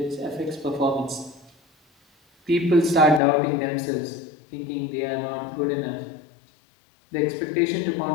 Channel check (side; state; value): right; drops out; at 3.2 s